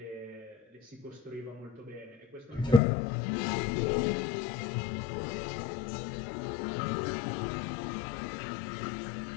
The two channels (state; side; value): drops out; right; at 2.8 s